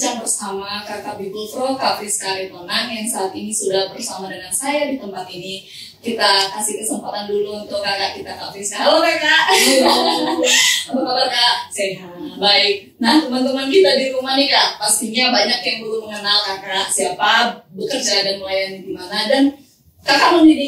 bersama Kakak Bible Pro, Kak Friska Ritonang yang saat ini sudah bersama dengan saya di tempat ini. Kita kasih kesempatan dulu untuk kakak kita, Kak Friska. Halo Kakak. Halo. Apa kabar Kak? Sehat. Baik. Nah, teman-teman kita di rumah nih Kak, pastinya banyak yang belum mengenal Kakak, siapa, bekerja dan melayani di mana, dan Kakak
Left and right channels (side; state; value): both; identical; correlation 1.00